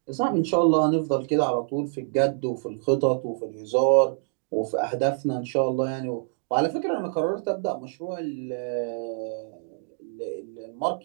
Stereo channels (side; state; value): left; silent; digital silence